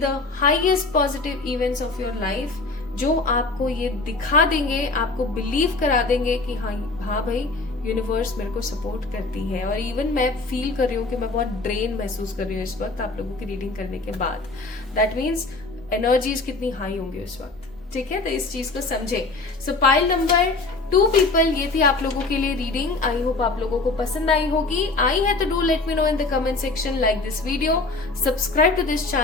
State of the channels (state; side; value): quieter; right; 3.5 dB